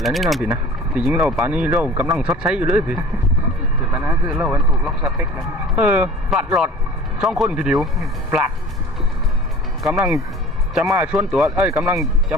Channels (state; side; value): normal; both; correlation 0.43